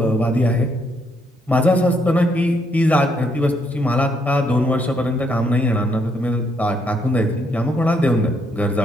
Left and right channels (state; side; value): normal; both; correlation 0.73